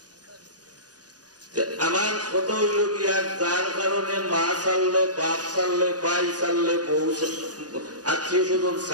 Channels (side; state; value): left; late; 0.68 ms